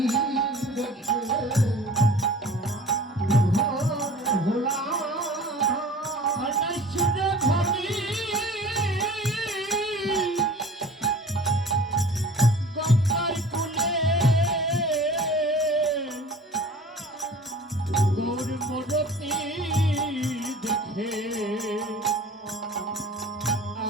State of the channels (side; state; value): both; normal; correlation 0.44